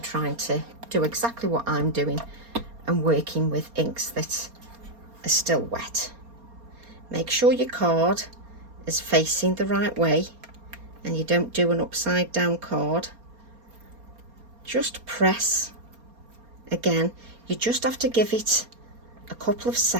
trying to do exactly what I'm doing and working with inks that are still wet. Make sure your card is facing the right way and you don't do an upside down card, just press again. You just have to give it a couple of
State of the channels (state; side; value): late; left; 4.3 ms